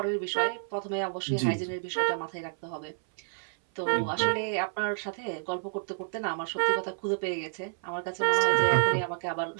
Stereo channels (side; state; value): left; silent; 57 dB below the other